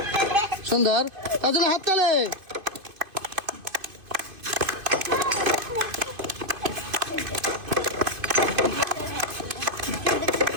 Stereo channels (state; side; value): late; left; 2.5 ms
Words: সুন্দর। তার জন্য হাততালি।